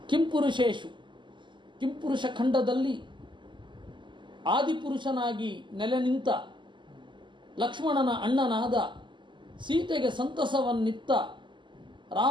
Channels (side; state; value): left; late; 0.23 ms